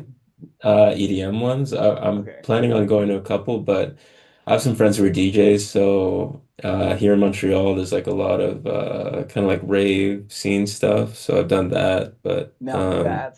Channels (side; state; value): both; identical; correlation 1.00